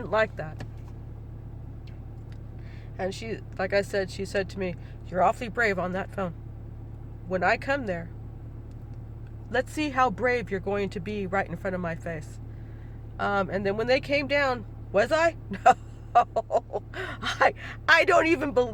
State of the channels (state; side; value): identical; both; correlation 1.00